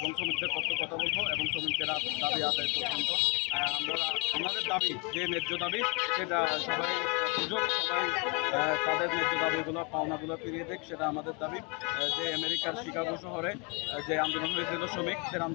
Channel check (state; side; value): quieter; right; 28.8 dB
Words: শ্রমিকদের পক্ষে কথা বলবো এবং শ্রমিকদের দাবি আদায় পর্যন্ত আমরা আমাদের দাবি যে ন্যায্য দাবি সেটা সবাই সুযোগ সবাই তাদের ন্যায্য দাবিগুলো পাওনাগুলো ফিরিয়ে দেখ, সেটা আমাদের দাবি। যে আমেরিকার শিকাগো শহরে যে আন্দোলন হয়েছিল শ্রমিকদের